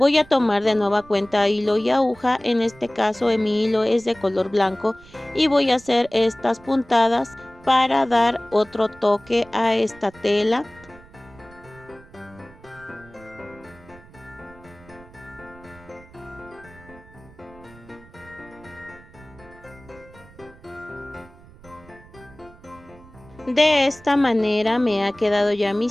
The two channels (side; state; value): right; noise; rumble, 23 dB below the sound